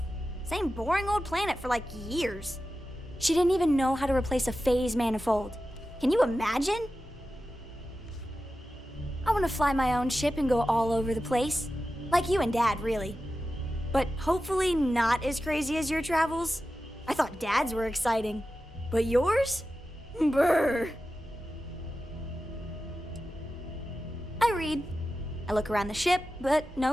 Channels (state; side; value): normal; both; correlation 0.93